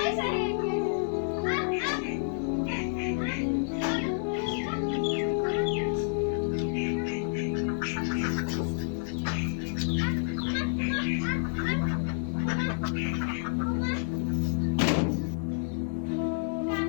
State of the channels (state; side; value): silent; right; digital silence